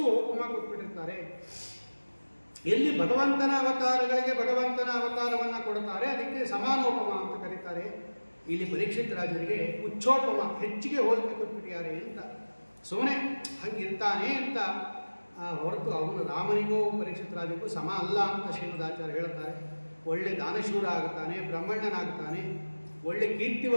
ಉಪಮ ಕೊಟ್ಬಿಟ್ಟಿರ್ತಾರೆ. ಎಲ್ಲಿ ಭಗವಂತನ ಅವತಾರಗಳಿಗೆ ಭಗವಂತನ ಅವತಾರವನ್ನು ಕೊಡ್ತಾರೆ ಅದಕ್ಕೆ ಸಮಾನೋಪಮ ಅಂತ ಕರೀತಾರೆ. ಇಲ್ಲಿ ಪರೀಕ್ಷಿತ್ ರಾಜರಿಗೆ ಉಚ್ಚೋಪಮ, ಹೆಚ್ಚಿಗೆ ಹೋಲಿಕೆ ಕೊಟ್ಬಿಟ್ಟಿದ್ದಾರೆ ಅಂತ ಸುಮ್ಮನೆ ಹಂಗಿರ್ತಾನೆ ಅಂತ ಹೊರತು ಅವನು ರಾಮನಿಗೂ ಪರೀಕ್ಷಿತ್ ರಾಜನಿಗೂ ಸಮ ಅಲ್ಲ ಅಂತ ಶ್ರೀಮದಾಚಾರ್ಯ ಹೇಳ್ತಾರೆ. ಒಳ್ಳೆ ದಾನಶೂರ ಆಗುತ್ತಾನೆ, ಬ್ರಹ್ಮಣ್ಣನಾಗ್ತಾನೆ, ಒಳ್ಳೆ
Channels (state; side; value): inverted; both; correlation -1.00